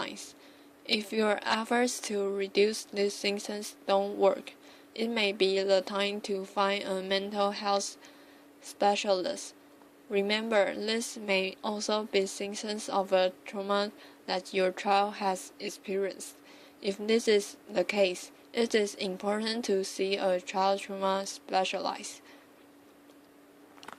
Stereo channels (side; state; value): both; identical; correlation 1.00